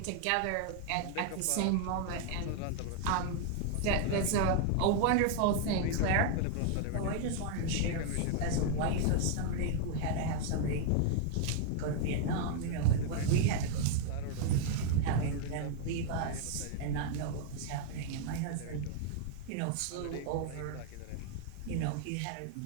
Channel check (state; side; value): different; both; correlation 0.00